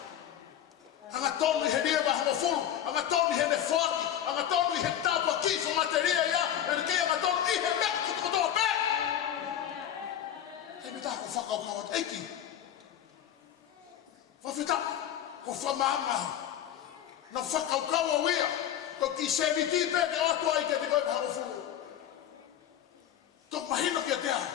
Hanga tonu i he nieva hanga fulu, hanga tonu i he ne whaki, hanga tonu i he tāpua kifo materia ia, e ni kei hanga tonu i he mea kutukotoa me. Hei me tāko whakaukau at eiki. Whawhita, ko whamanga, na whakaukau au ia, ko ki se ni tipe ne atua i ke te koe hanga fulu. Tok mahino ki a te au.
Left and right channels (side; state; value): right; quieter; 10.5 dB